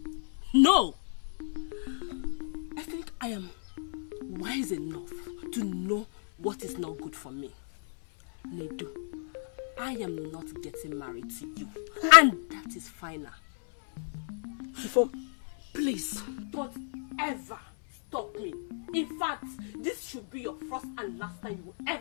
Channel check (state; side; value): silent; right; 56 dB below the other